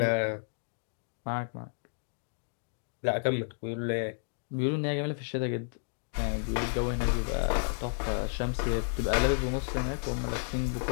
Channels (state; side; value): silent; right; digital silence